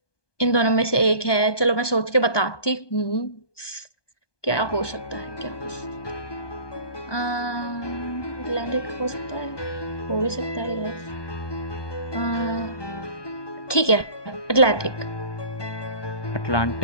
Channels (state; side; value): late; right; 1.2 ms